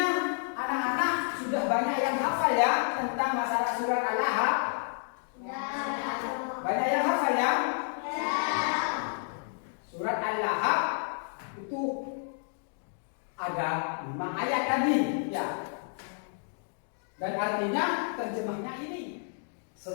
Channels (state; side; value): silent; right; 58 dB below the other